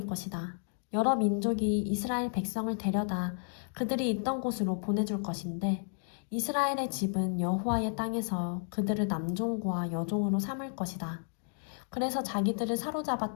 것이다. 여러 민족이 이스라엘 백성을 데려다 그들이 있던 곳으로 보내줄 것인데 이스라엘의 집은 여호와의 땅에서 그들을 남종과 여종으로 삼을 것이다. 그래서 자기들을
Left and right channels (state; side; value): silent; right; digital silence